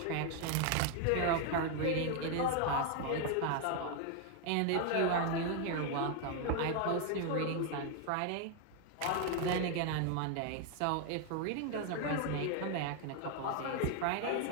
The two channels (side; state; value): both; different; correlation 0.01